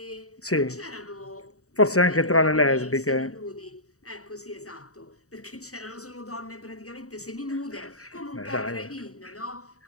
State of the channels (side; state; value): right; late; 0.65 ms